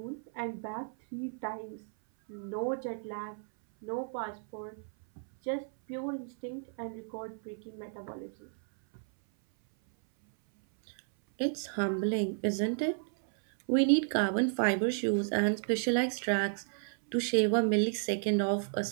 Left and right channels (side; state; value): left; silent; 56 dB below the other